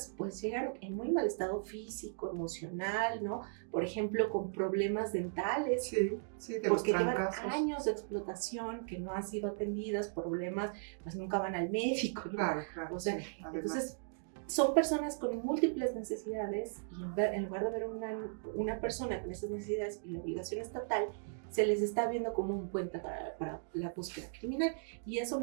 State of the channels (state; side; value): silent; left; digital silence